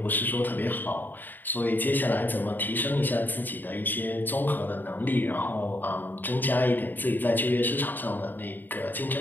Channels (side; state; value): right; late; 0.090 ms